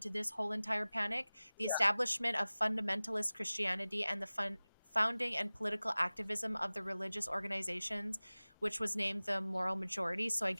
to this whole entire panic. The Yeah. establishment of fundamentalist Christianity and the founding and political activism of the religious organizations, which was named the moral majority. So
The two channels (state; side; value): inverted; both; correlation -0.98